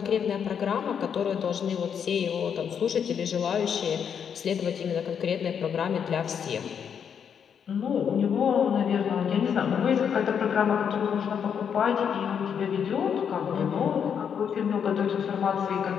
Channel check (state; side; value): quieter; right; 7.6 dB